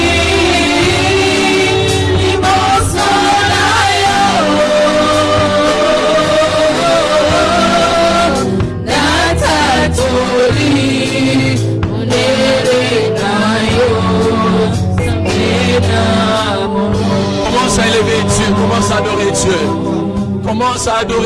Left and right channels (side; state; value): both; identical; correlation 1.00